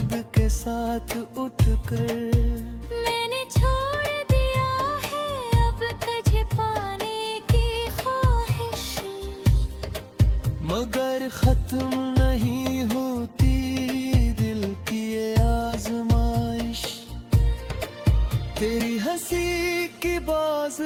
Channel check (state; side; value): identical; both; correlation 1.00